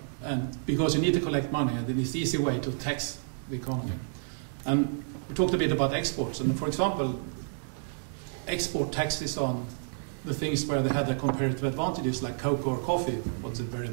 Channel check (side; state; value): left; silent; 58 dB below the other